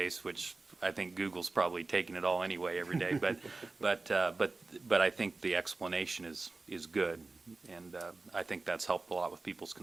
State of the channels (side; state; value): left; quieter; 3.5 dB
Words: which I think Google's probably taking it all anyway every day. But I think the explanation is good, and I think that's helped a lot with people's